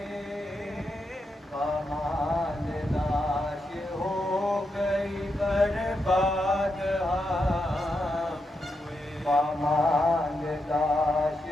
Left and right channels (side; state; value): both; normal; correlation 0.84